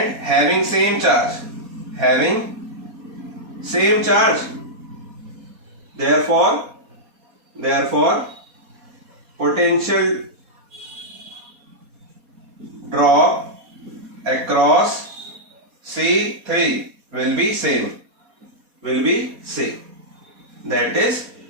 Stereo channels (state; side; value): late; left; 4.2 ms